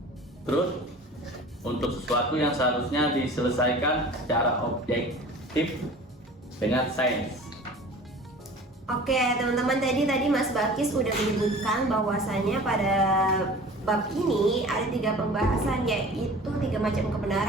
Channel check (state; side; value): normal; both; correlation 0.42